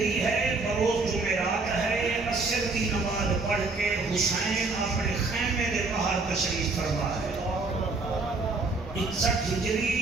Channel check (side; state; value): left; quieter; 3.7 dB